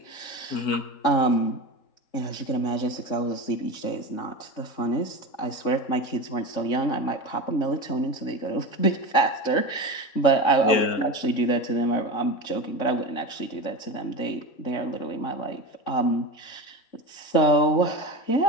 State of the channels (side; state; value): right; late; 3.6 ms